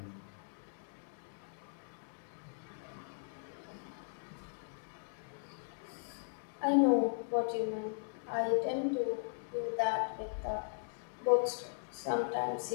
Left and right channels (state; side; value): silent; right; digital silence